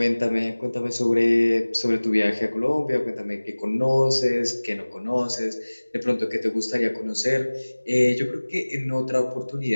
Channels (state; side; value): inverted; both; correlation -1.00